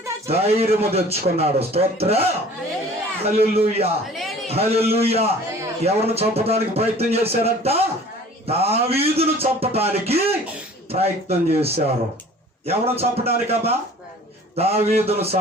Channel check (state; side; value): normal; both; correlation 0.47